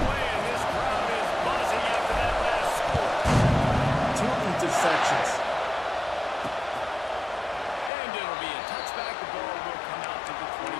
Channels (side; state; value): right; drops out; at 7.9 s